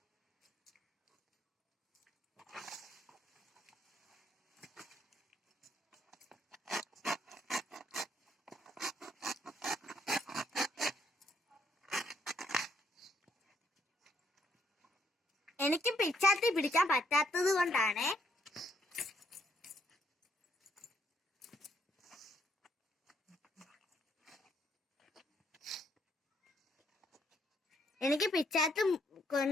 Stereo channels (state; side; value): normal; both; correlation 0.71